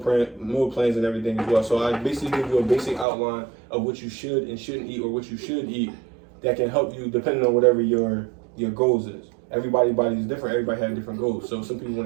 and everything as well. So I basically give you a basic outline of what you should and shouldn't eat, or what you should eat, that can help you depending on whatever your goals is. Everybody's body is different. Everybody has different goals. So some people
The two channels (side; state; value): left; drops out; at 3.1 s